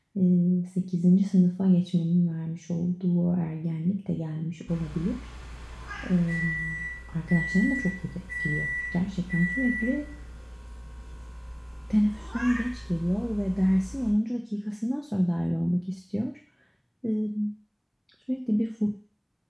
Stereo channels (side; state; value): both; identical; correlation 1.00